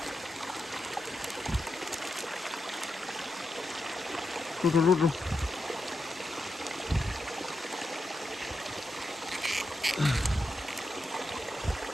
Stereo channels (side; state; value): both; normal; correlation 0.86